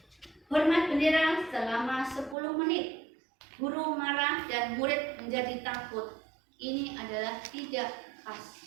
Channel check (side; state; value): left; drops out; at 2.4 s